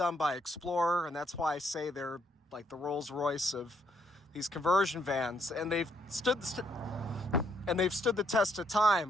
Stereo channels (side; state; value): both; normal; correlation 0.72